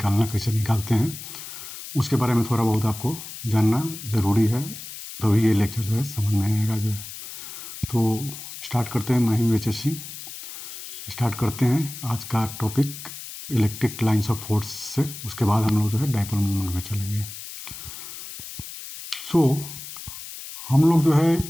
कैसे निकालते हैं, उसके बारे में थोड़ा बहुत आपको जानना ज़रूरी है, तभी ये लेक्चर जो है समझ में आएगा जो है। तो स्टार्ट करते हैं, मैं हूँ HSC। स्टार्ट करते हैं आज का topic electric lines of force से। उसके बाद हम लोग जो है डाइपोल मूवमेंट में चलेंगे। हम लोग जो है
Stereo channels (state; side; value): noise; left; hiss, 11 dB below the sound